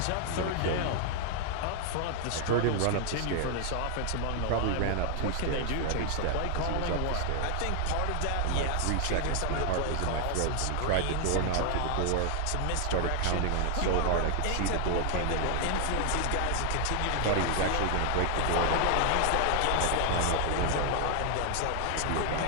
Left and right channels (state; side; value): different; both; correlation 0.00